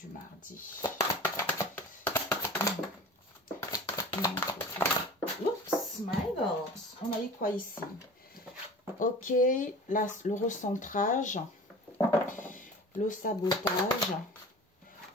mardi. Oups, my God. On a eu quoi ici? Ok, là, le recentrage, le sabotage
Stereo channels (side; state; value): both; normal; correlation 0.39